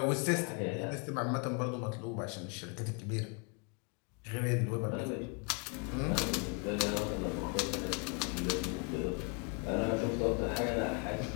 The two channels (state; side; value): quieter; right; 35.3 dB